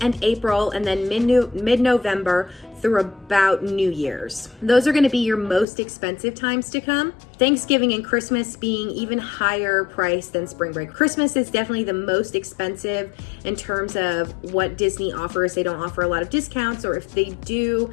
and April and then mid-November through about New Year's. Those are going to be your most expensive times to come. Thanksgiving and Christmas being even higher price than spring break. Christmas is definitely the most expensive in terms of what Disney offers. They don't offer a lot of discounts, or if they do,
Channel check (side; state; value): right; drops out; at 5.7 s